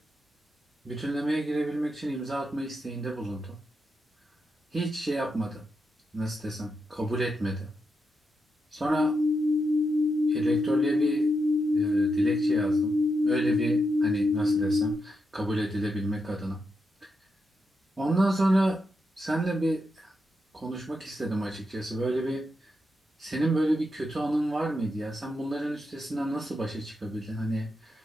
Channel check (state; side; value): normal; both; correlation 0.85